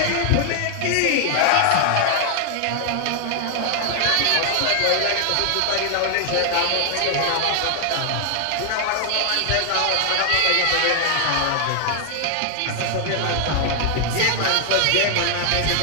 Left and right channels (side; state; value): both; different; correlation 0.00